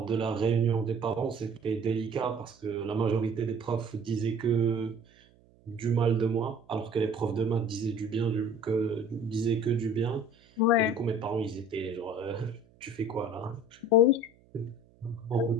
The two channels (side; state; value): right; noise; hum, 30 dB below the sound